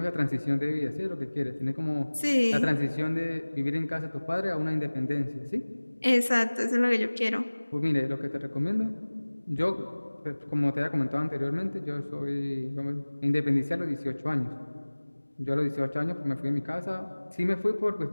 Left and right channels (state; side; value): inverted; both; correlation -1.00